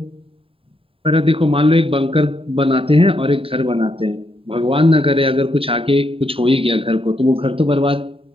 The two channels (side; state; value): left; late; 0.27 ms